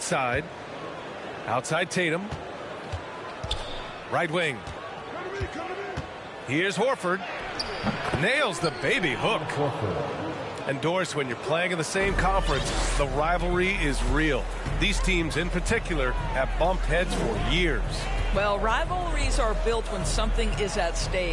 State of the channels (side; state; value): both; identical; correlation 1.00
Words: Outside Tatum. Right wing. Here's Horford. Nails the baby hook. And Doris, when you're playing in the same conference, the rivalry is real. These teams in particular have bumped heads for years. Well, rivalries are built when something is at